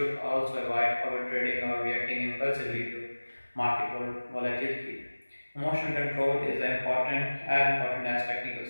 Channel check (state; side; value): inverted; both; correlation -1.00